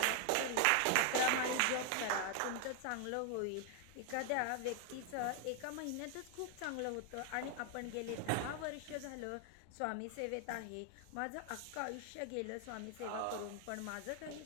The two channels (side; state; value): both; different; correlation 0.00